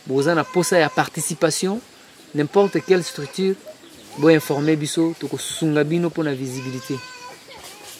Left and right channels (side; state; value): both; identical; correlation 1.00